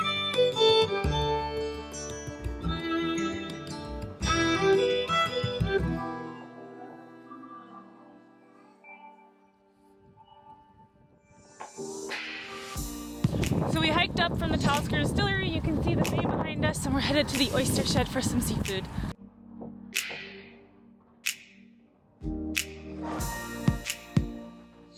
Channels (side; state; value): both; identical; correlation 1.00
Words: So we hiked up from the Talisker Distillery. You can see the bay behind us, and we're headed to the Oyster Shed for some seafood.